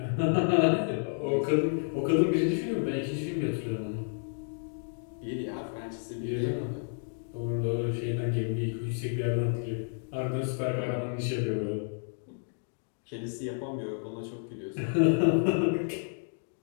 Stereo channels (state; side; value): silent; right; digital silence